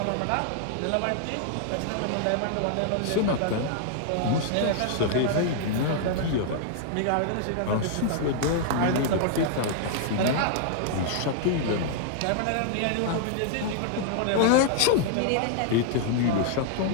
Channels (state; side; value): different; both; correlation 0.00